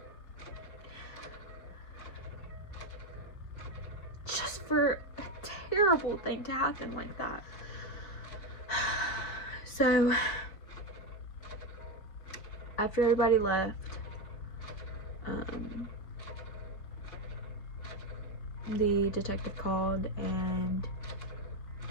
Just for a terrible thing to happen like that. So, after everybody left, the detective called and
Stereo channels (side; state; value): right; late; 5.0 ms